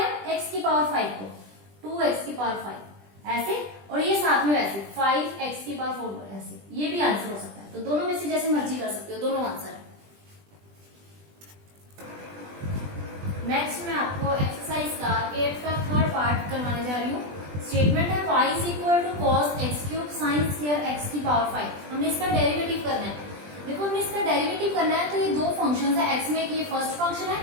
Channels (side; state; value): left; late; 20 ms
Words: x की पावर 5 को, 2x की पावर 5 ऐसे, और ये साथ में वैसे 5x की पावर 4 ऐसे, ये भी आंसर हो सकता है। तो दोनों में से जैसे मर्जी कर सकते हो, दोनों आंसर है। नेक्स्ट मैं आपको एक्सरसाइज का 8th का थर्ड पार्ट करवाने जा रही हूँ। स्टेटमेंट है y is equal to cos x cube sine square x की पावर 5, हमने इसका डेरिवेटिव करना है। देखो हमने इसका डेरिवेटिव करना है, तो ये दो फंक्शन है, x में ये फर्स्ट फंक्शन है